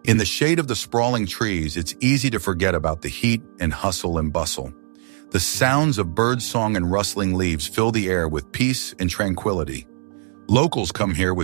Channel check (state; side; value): silent; left; digital silence